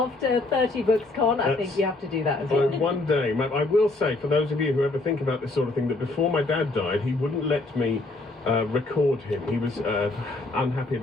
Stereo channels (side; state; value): right; quieter; 3.1 dB